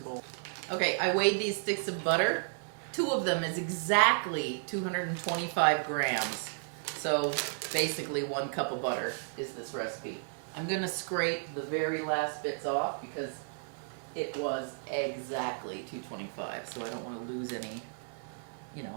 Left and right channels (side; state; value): left; silent; 56 dB below the other